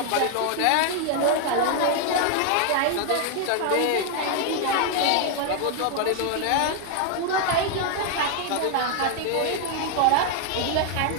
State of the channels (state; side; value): different; both; correlation 0.00